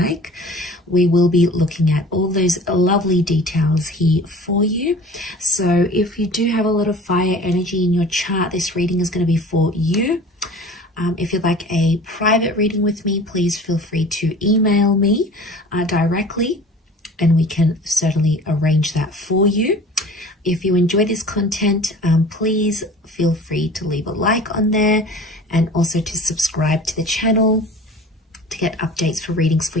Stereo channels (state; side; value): normal; both; correlation 0.43